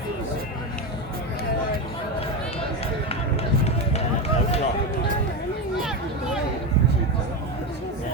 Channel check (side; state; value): both; normal; correlation 0.15